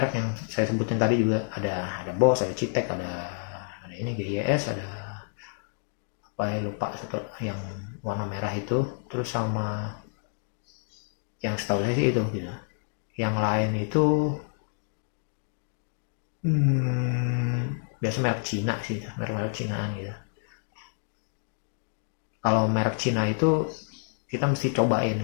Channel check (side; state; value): right; silent; digital silence